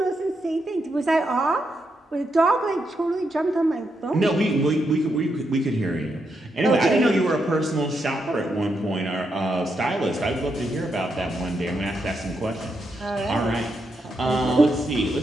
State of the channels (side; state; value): both; normal; correlation 0.82